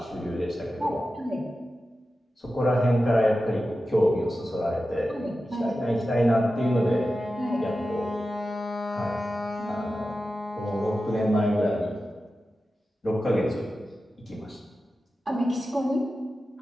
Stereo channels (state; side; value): normal; both; correlation 0.93